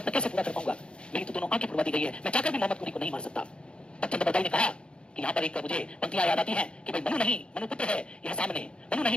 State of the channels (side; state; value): right; late; 0.055 ms